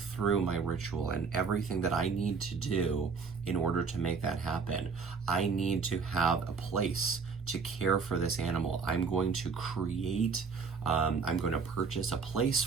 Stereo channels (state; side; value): quieter; left; 5.3 dB